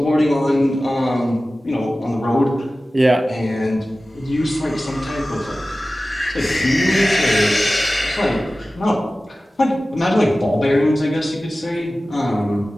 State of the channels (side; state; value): both; normal; correlation 0.96